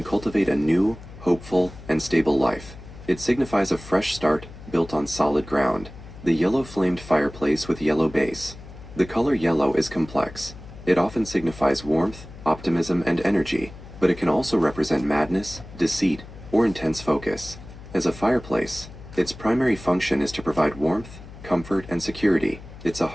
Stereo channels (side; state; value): left; noise; hum, 16 dB below the sound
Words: cultivate a new, hopeful, and stable life. It signifies a fresh start built on solid ground. The yellow flamed fireplace with yellow base. The color yellow is complex. It often signifies warmth, optimism, and energy, but it can also represent madness, deceit, or intense focus. As a fireplace, its primary function is to provide warmth, comfort, and security. It's a